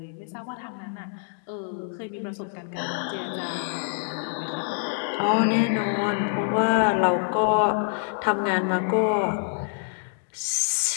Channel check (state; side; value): silent; right; 61 dB below the other